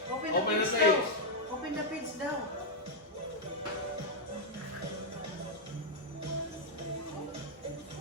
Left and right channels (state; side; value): normal; both; correlation -0.03